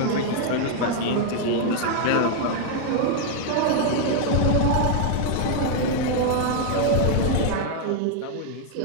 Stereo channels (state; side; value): different; both; correlation 0.00